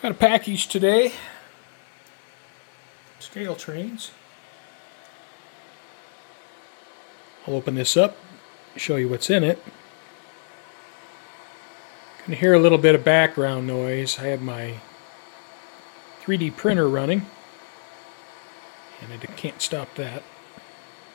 a package today. Scale trains. I'll open this up, show you what's in it. You can hear a little bit of background noise. I have my 3D printer running, and I can't stop that.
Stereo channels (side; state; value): right; silent; digital silence